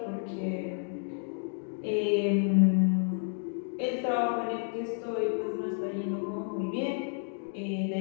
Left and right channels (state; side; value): silent; right; 57 dB below the other